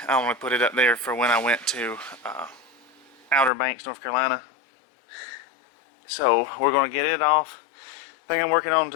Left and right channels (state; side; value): drops out; right; at 3.5 s